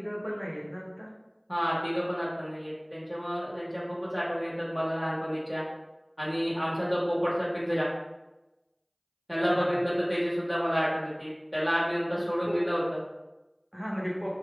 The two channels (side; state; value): both; identical; correlation 1.00